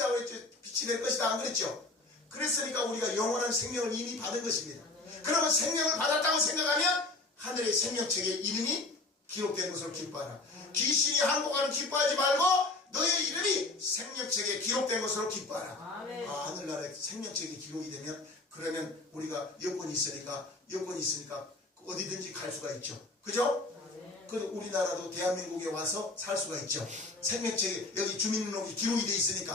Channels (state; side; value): quieter; right; 3.2 dB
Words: 했죠. 빛이 될 것이다. 안 그랬죠? 그랬으니까 우리가 영원한 생명을 이미 받은 것입니다. 그러면 생명을 받았다고 생각하면 하늘의 생명책에 이름이 기록된 것으로 기뻐하라. 귀신이 항복하는 기뻐하지 말고 너의 이름이 생명책에 기록된 것으로 기뻐하라. 하늘나라에 생명책에 기록이 되면 그러면 우리가 여권이 있으니까 어디든지 갈 수가 있죠. 그죠? 그 우리나라도 대한민국에 와서 살 수가 있죠. 생명책에 여기 주민등록이 기록이 돼